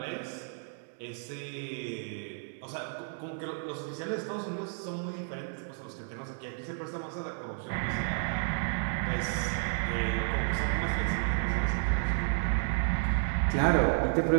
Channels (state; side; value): silent; left; 57 dB below the other